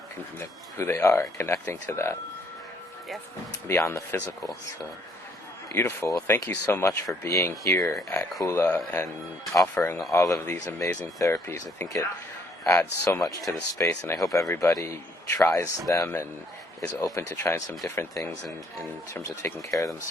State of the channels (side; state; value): both; normal; correlation 0.66